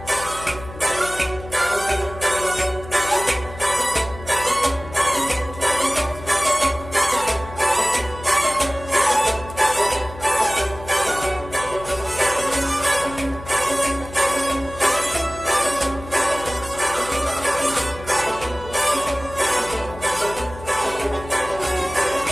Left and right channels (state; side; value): noise; left; hum, 15 dB below the sound